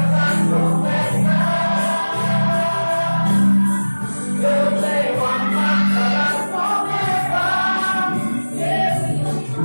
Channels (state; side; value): inverted; both; correlation -1.00